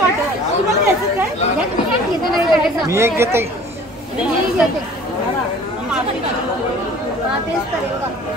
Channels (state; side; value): normal; both; correlation 0.48